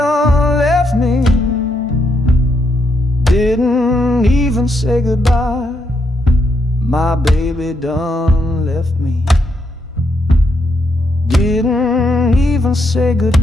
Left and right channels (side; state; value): both; normal; correlation 0.78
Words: left me, didn't even say goodbye. My baby done left me, didn't even say